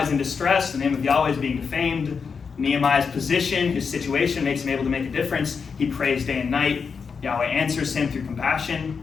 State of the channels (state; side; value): quieter; right; 5.7 dB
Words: is in distress, the name of Yahweh is being defamed. Nehemiah's position, his situation makes him able to make a difference. He prays day and night. Yahweh answers him through compassion.